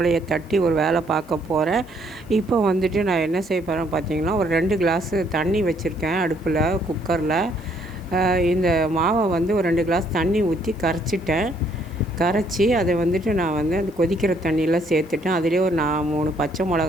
தட்டி ஒரு வேலை பார்க்க போகிறேன். இப்போ வந்துட்டு நான் என்ன செய்ய போகிறேன் பார்த்திங்கன்னா, ஒரு 2 கிளாஸு தண்ணி வச்சுருக்கேன் அடுப்பில், குக்கரில். இந்த மாவை வந்து ஒரு 2 கிளாஸ் தண்ணி ஊற்றி கரைச்சி அதை வந்துட்டு நான் வந்து அந்த கொதிக்கிற தண்ணியில் சேர்த்துட்டேன். அதிலே ஒரு 3 பச்சை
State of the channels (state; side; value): noise; right; hiss, 30 dB below the sound